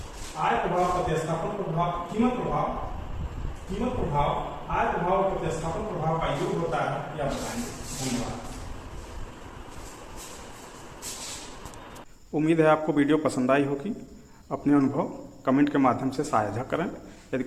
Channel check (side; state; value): both; identical; correlation 1.00